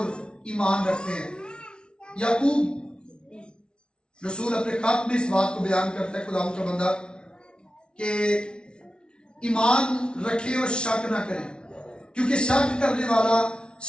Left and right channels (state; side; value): late; right; 0.056 ms